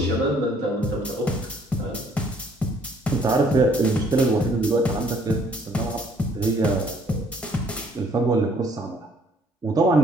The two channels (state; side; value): normal; both; correlation 0.62